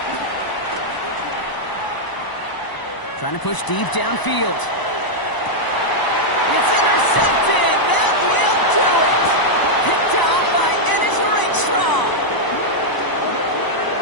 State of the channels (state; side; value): late; right; 1.0 ms